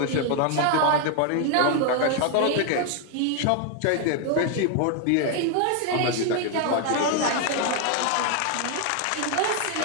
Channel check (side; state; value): both; different; correlation 0.01